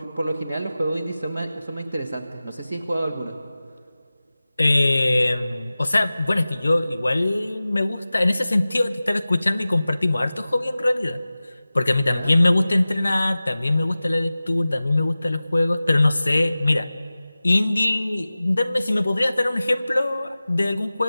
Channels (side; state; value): both; inverted; correlation -0.97